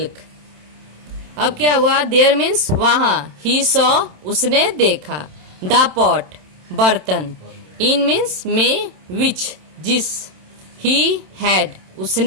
अब क्या हुआ? देयर मीन्स वहां, ही सॉ उसने देखा, द पॉट बर्तन, इन मीन्स में, विच जिस, ही हैड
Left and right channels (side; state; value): left; late; 27 ms